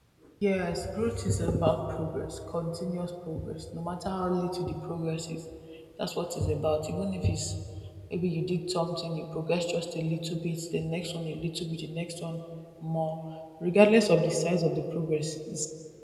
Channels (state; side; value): identical; both; correlation 1.00